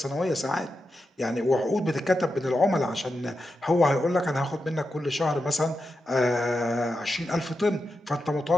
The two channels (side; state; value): both; normal; correlation 0.88